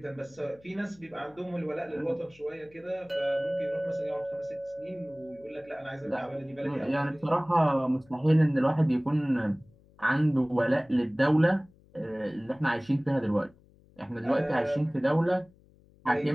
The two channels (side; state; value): left; noise; hum, 28 dB below the sound